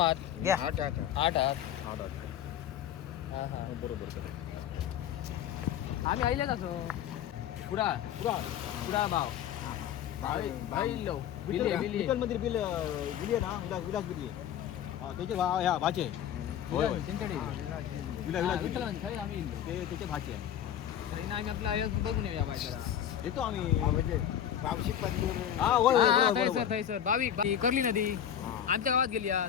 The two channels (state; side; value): quieter; right; 9.9 dB